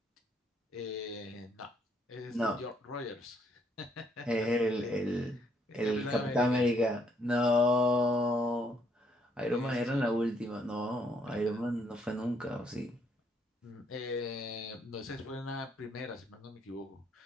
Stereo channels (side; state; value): both; normal; correlation 0.70